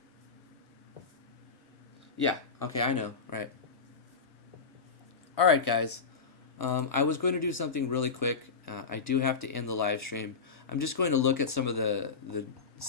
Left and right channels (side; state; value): right; quieter; 5.0 dB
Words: Yeah, okay, I know, right. Alright, guys. I was going to do something really quick. I do have to end the live stream. I'm just going to look at some of the